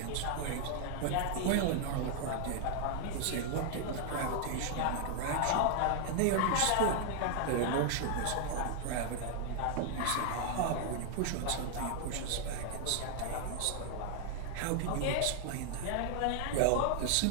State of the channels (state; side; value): different; both; correlation 0.00